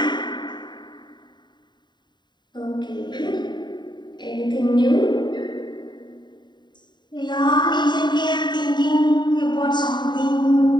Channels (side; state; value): right; late; 0.22 ms